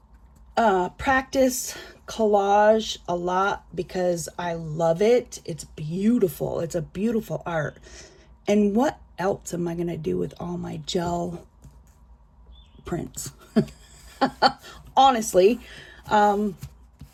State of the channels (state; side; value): identical; both; correlation 1.00